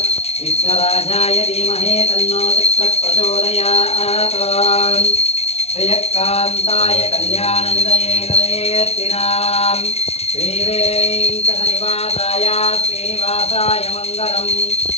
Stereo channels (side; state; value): right; late; 0.30 ms